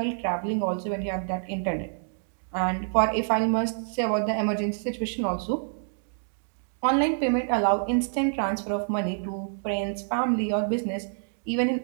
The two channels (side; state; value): left; silent; digital silence